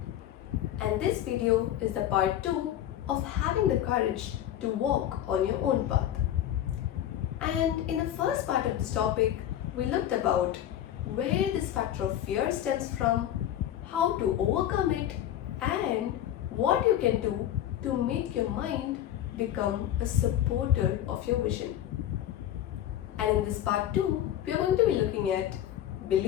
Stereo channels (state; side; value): quieter; right; 11.6 dB